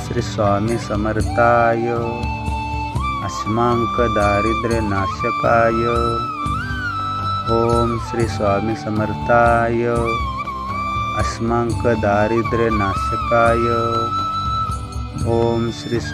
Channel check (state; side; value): identical; both; correlation 1.00